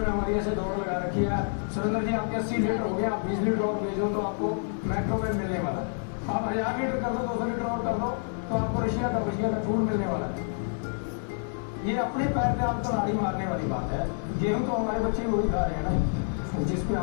हमारी ऐसे दौड़ लगा रखी है, सुरेंद्र जी आपके 80 लीटर हो गया, आप 20 लीटर और भेजो तो आपको मैक्रोवेव मिलने वाला है। आप 1000 लीटर कर दो, 200 लीटर और कर दो तो आपको रशिया का फूड मिलने वाला है। ये अपने पैर पे आपको लाड़ी मारने वाली बात है। गेहूं तो हमारे बच्चे वही खा रहे हैं ना, जिसपे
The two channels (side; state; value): right; silent; 59 dB below the other